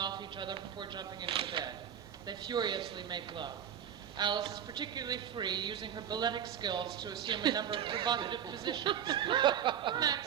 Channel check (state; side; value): quieter; left; 9.2 dB